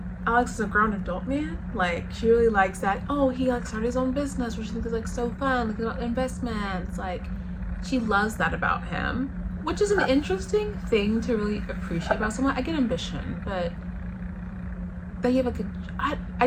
Alex is a grown adult man. Like, she really likes that, oh, he like started his own business, which she thinks is like so fun, like about investments. Like, she loves that about him, which is an interesting thing to really appreciate about someone. I get ambition, but that you have like I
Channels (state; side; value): identical; both; correlation 1.00